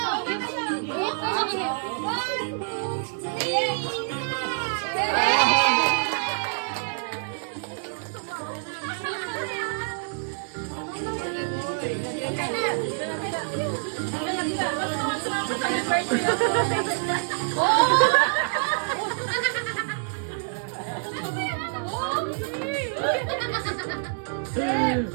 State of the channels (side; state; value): left; silent; digital silence